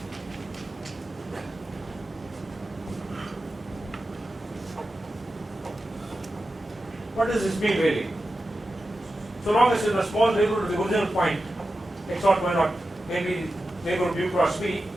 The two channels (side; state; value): both; normal; correlation 0.92